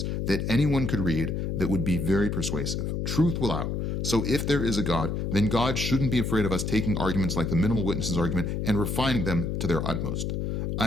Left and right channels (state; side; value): noise; left; hum, 1 dB below the sound